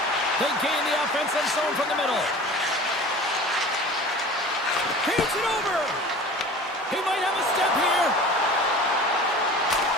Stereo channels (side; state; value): both; normal; correlation 0.40